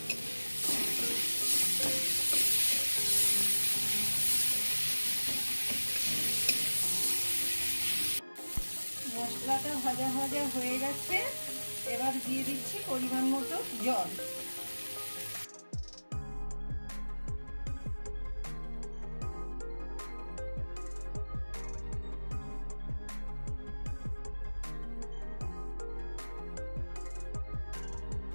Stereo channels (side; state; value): both; inverted; correlation -1.00